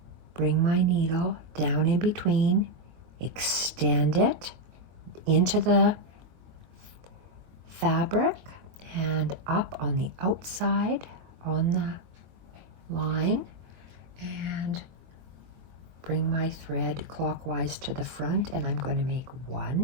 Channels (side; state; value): left; late; 22 ms